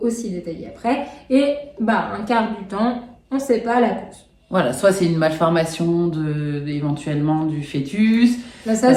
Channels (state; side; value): identical; both; correlation 1.00